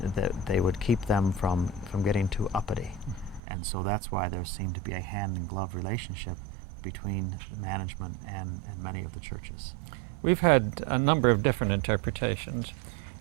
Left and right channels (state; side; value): drops out; left; at 3.4 s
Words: they would keep them from getting too uppity. And so that's why there seemed to be a hand-in-glove relationship between the management and many of the churches. We've had a number of different interpretations.